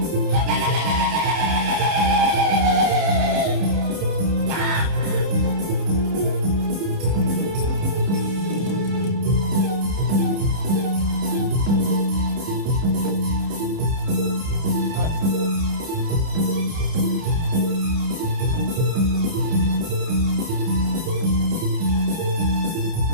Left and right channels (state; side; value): late; left; 30 ms